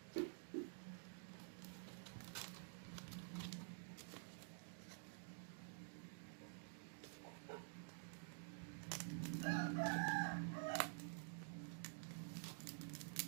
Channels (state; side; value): silent; left; digital silence